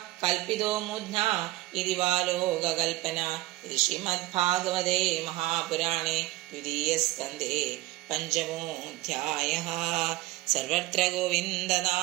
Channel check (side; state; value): left; quieter; 18.6 dB